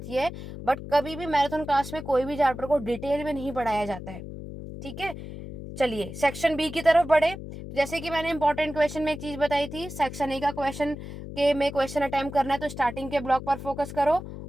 ये है। बट कभी भी मैराथन क्लास में कोई भी चैप्टर को डिटेल में नहीं पढ़ाया जाता है, ठीक है। चलिए सेक्शन बी की तरफ बढ़े। जैसे कि मैंने इंपॉर्टेंट क्वेश्चन में एक चीज बताई थी, सेक्शन ए का क्वेश्चन के में क्वेश्चन अटेम्प्ट करना है तो स्टार्टिंग के ब्लॉक पर फोकस करो,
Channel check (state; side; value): noise; left; hum, 10 dB below the sound